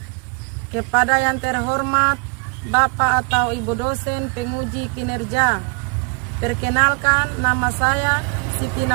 Kepada yang terhormat Bapak atau Ibu dosen penguji kinerja, perkenalkan nama saya Siti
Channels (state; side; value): quieter; left; 33.7 dB